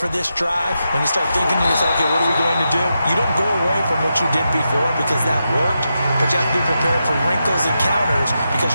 this drive, when you start thinking to yourself, okay, what are we going to do? You don't go away from what you did before because that worked, but you have to be prepared for wrinkles and counters because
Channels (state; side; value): inverted; both; correlation -0.87